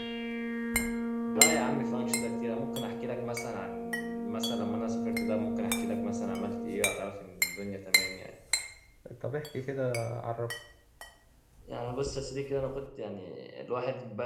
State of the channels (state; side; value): identical; both; correlation 1.00